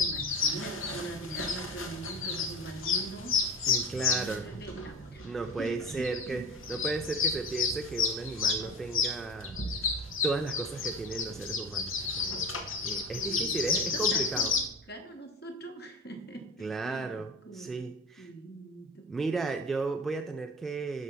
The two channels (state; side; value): normal; both; correlation 0.31